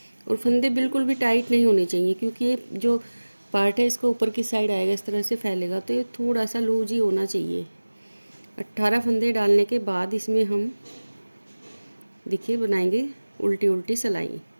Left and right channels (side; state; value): both; inverted; correlation -1.00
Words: और फंदे बिल्कुल भी टाइट नहीं होने चाहिए, क्योंकि ये जो पार्ट है इसको ऊपर की साइड आएगा, इस तरह से फैलेगा, तो ये थोड़ा सा लूज ही होना चाहिए। 18 फंदे डालने के बाद इसमें हम देखिए बनाएंगे उल्टी उल्टी सिलाई।